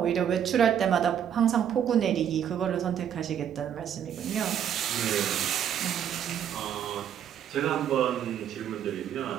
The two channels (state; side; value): quieter; left; 9.2 dB